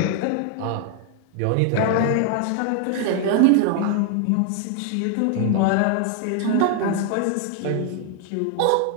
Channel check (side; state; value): both; different; correlation 0.00